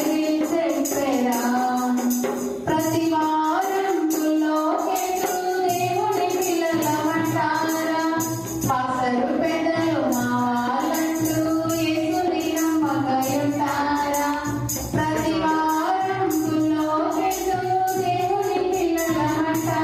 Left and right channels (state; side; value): identical; both; correlation 1.00